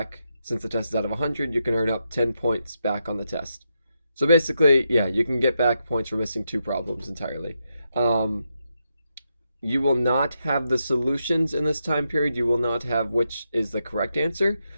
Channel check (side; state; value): both; inverted; correlation -0.84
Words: since the test is out of 100, you can earn up 10 points back on the test. So basically, yeah, you can get back points for missing 2 problems entirely. You will not have the solutions in this time period. You will not have which is the correct answer.